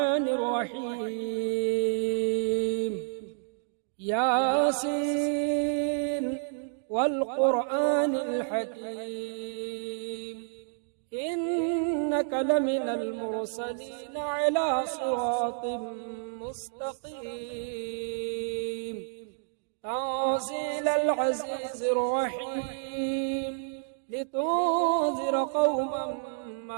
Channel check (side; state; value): left; silent; digital silence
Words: الرحيم ياسين والقرآن الحكيم إنك لمن المرسلين على صراط مستقيم تنزيل العزيز الرحيم لتنذر قوما